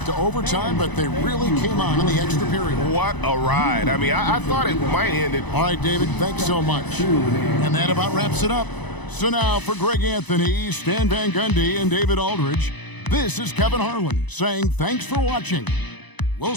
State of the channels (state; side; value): late; right; 1.0 ms